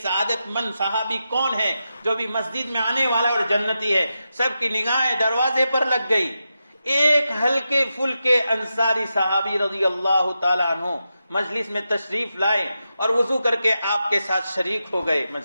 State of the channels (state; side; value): inverted; both; correlation -0.89